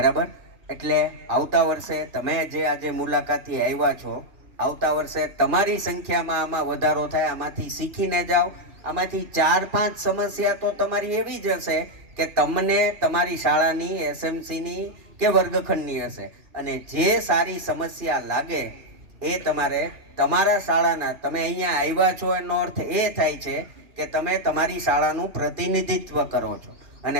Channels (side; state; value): left; late; 2.6 ms